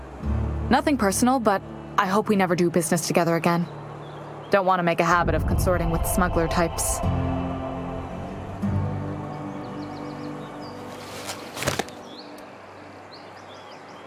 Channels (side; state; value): both; identical; correlation 1.00